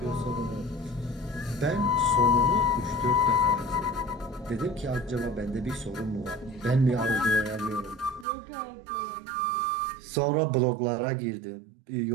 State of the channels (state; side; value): drops out; left; at 8.2 s